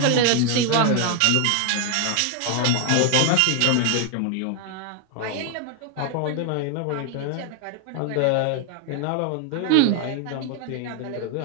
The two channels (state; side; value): different; both; correlation 0.01